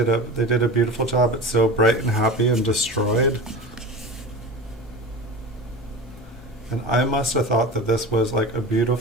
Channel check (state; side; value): normal; both; correlation 0.31